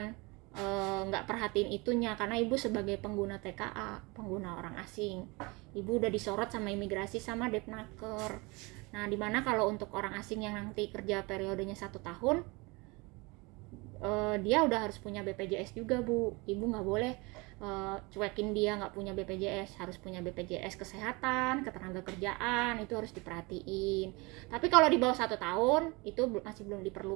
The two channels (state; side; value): quieter; left; 26.2 dB